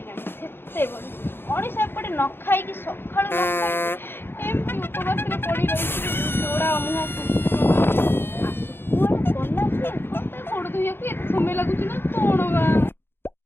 ସେତେବେଳେ ମଣିଷ ଏପଟେ ନ ଖାଇକି ସକାଳୁ ନ ଖାଇକି ଏମିତି ଉପବାସରେ ପଡ଼ି ରହିଛି। ଗୋଡ଼ା ମୁହଁ କୁଆଡ଼େ ଗଲା ସିଏ? ମୋତେ ଗୋଡ଼ ଧୋଇବାକୁ ଏତେ ସମୟ ଲାଗୁଛି ନା କ'ଣ ବା?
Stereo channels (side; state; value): right; late; 0.11 ms